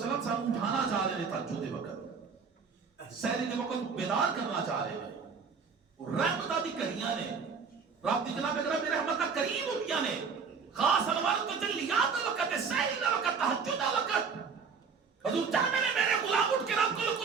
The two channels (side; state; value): left; quieter; 5.6 dB